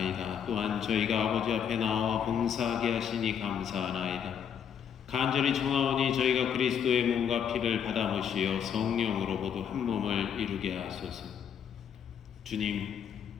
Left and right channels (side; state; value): right; quieter; 8.1 dB